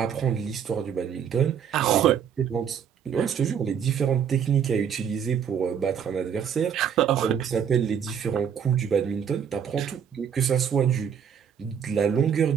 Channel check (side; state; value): left; quieter; 7.9 dB